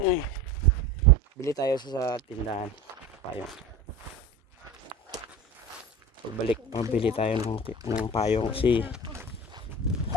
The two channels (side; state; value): both; normal; correlation 0.33